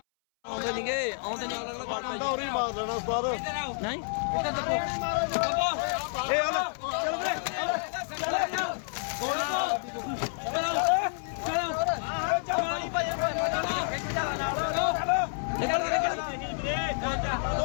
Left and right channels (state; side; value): silent; right; 58 dB below the other